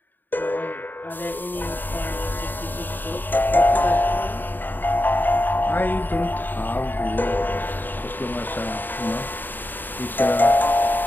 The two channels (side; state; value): right; late; 0.091 ms